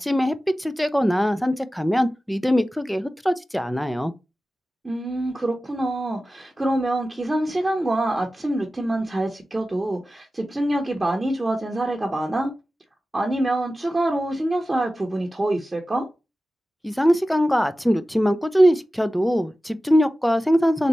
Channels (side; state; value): both; normal; correlation 0.95